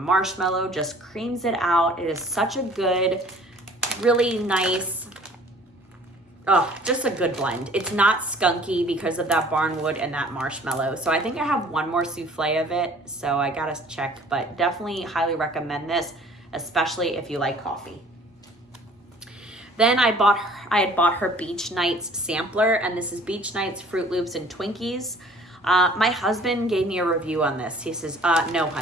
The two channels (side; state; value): both; normal; correlation 0.51